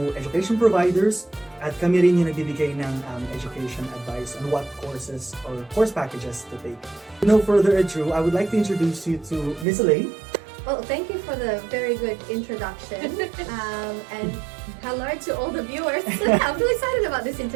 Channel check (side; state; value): left; drops out; at 9.7 s